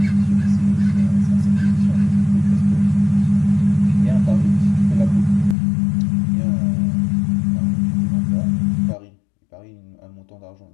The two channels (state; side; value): drops out; right; at 5.6 s